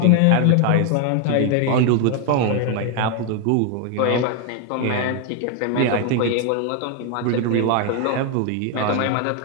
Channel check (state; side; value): different; both; correlation 0.01